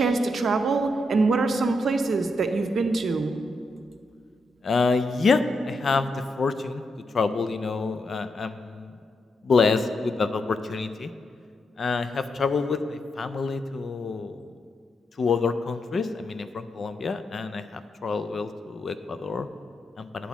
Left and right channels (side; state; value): both; normal; correlation 0.82